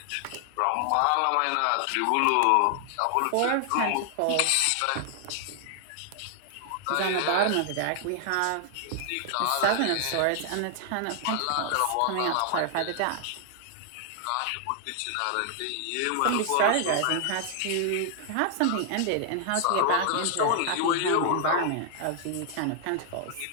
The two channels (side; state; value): both; different; correlation 0.00